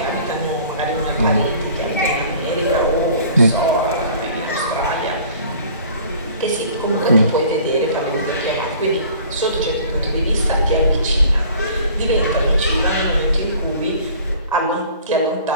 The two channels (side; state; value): both; inverted; correlation -0.49